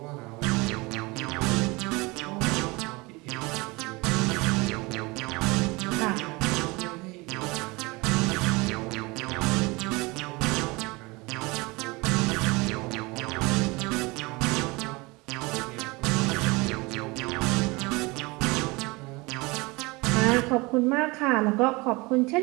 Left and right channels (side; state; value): left; quieter; 24.7 dB